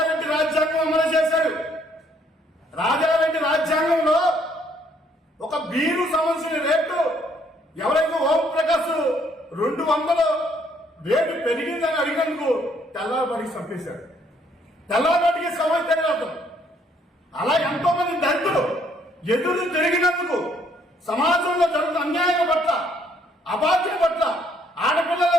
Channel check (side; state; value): both; normal; correlation 0.67